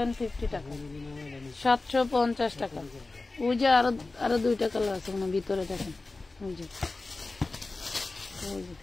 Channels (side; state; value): right; quieter; 3.4 dB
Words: টাকা, 750 টাকা। ওই যে আরো 2টা কালার আছে ভিতরে, দেখেন ওই যে